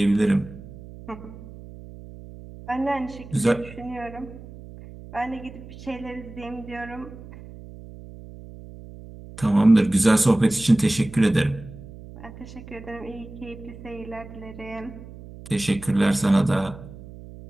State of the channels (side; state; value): right; noise; hum, 16 dB below the sound